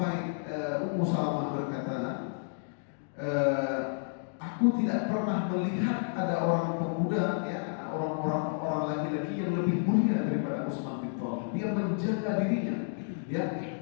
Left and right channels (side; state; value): right; silent; digital silence